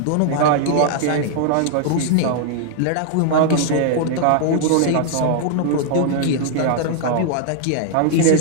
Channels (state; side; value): different; both; correlation 0.00